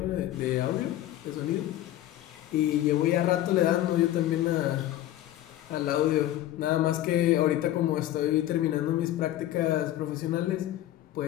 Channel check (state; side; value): quieter; right; 13.7 dB